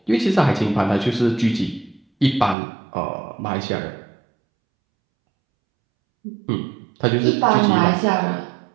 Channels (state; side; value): drops out; left; at 2.6 s